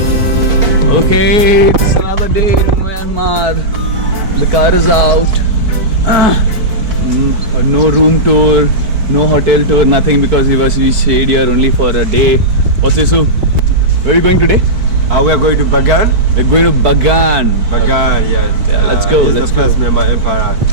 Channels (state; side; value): late; left; 4.6 ms